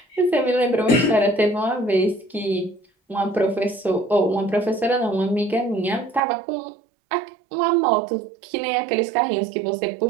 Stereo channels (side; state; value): left; drops out; at 6.2 s